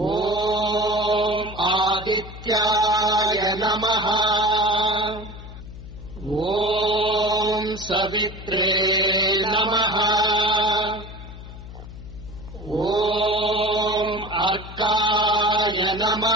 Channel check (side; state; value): left; noise; hum, 14 dB below the sound